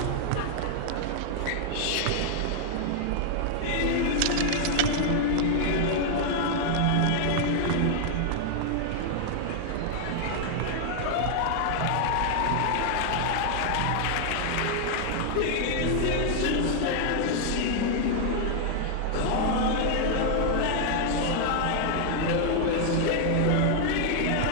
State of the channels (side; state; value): both; different; correlation 0.00